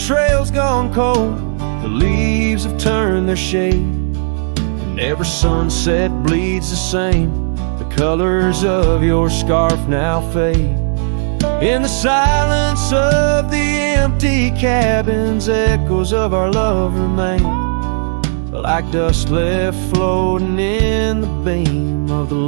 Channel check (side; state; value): left; silent; 70 dB below the other